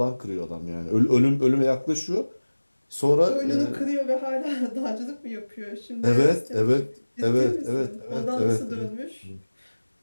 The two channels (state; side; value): inverted; both; correlation -1.00